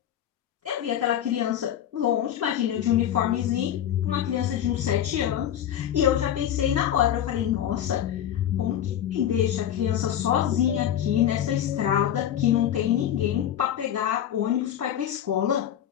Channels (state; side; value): quieter; right; 10.6 dB